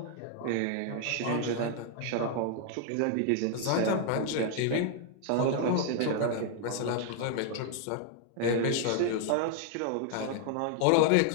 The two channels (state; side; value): different; both; correlation 0.00